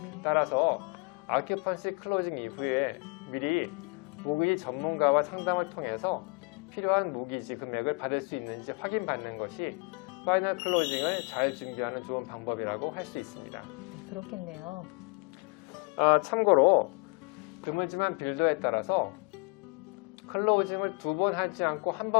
따라서 아큐펀시 클로징 이후에 미리 모기지 전문가와 상담을 통해서 필요한 모기지 금액을 받을 수 있는지 확인받는 것이 파이널 클로징을 잘 준비하는 좋은 방법이라고 할 수 있습니다. 네, 그렇겠네요. 참고로 드물지만 빌더에 따라서 클로징을 2번 하지 않고 한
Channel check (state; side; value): quieter; right; 31.2 dB